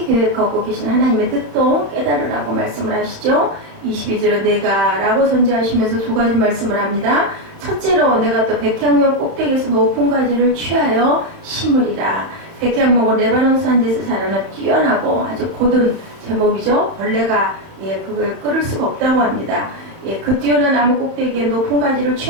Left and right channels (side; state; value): left; late; 30 ms